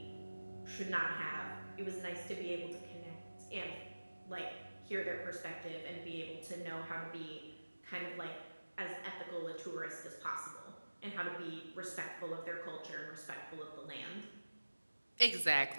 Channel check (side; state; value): both; inverted; correlation -1.00